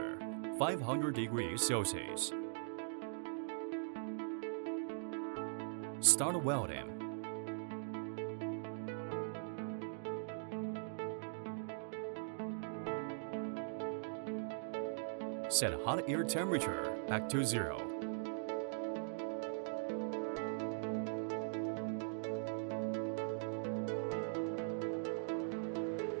500 degrees Celsius. Start welding. Set hot air temperature back to 0.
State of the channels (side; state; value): left; silent; digital silence